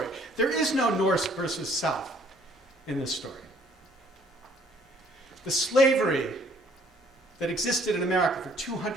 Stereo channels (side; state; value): both; normal; correlation 0.60